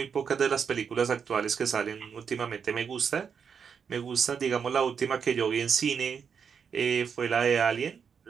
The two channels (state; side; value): quieter; left; 6.7 dB